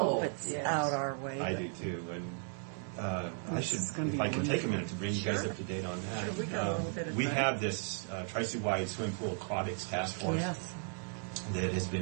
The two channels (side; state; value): left; silent; 54 dB below the other